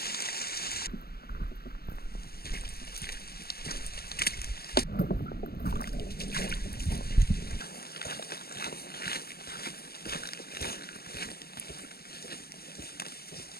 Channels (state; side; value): late; right; 0.45 ms